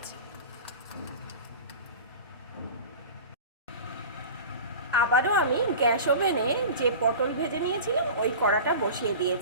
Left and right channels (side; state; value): both; inverted; correlation -0.34